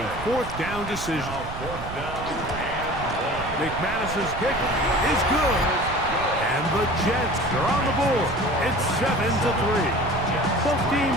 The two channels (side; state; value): right; noise; rumble, 10 dB below the sound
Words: 4th down decision. McManus's kick is good. And the Jets are on the board. It's 7-3. Both